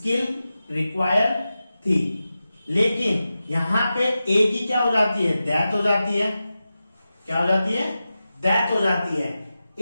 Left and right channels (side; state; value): both; inverted; correlation -0.93